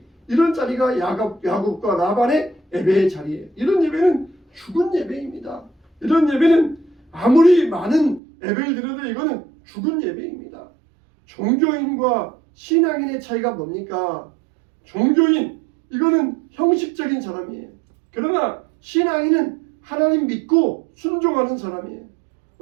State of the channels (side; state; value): left; drops out; at 8.2 s